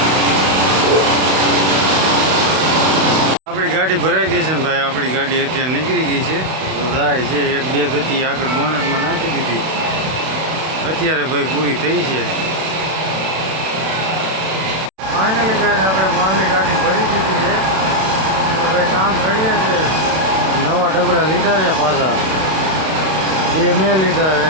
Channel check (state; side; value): late; left; 32 ms